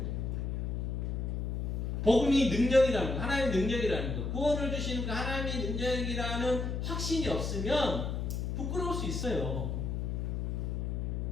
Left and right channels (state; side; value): noise; left; hum, 1 dB below the sound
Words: 복음이 능력이라는 거, 하나님의 능력이라는 거, 구원을 주시는 그 하나님의 능력이라는 확신이 없으면 부끄러울 수 있어요.